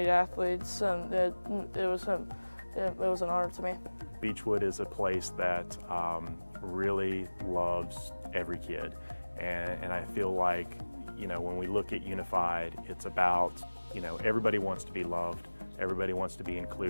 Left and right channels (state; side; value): inverted; both; correlation -1.00